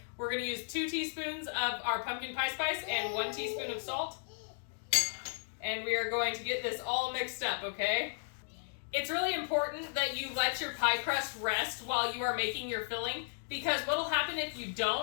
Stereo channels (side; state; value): right; silent; digital silence